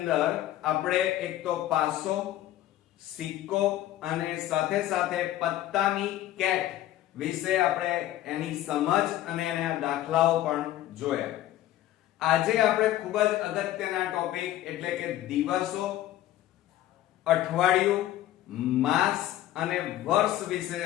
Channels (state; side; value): quieter; right; 13.7 dB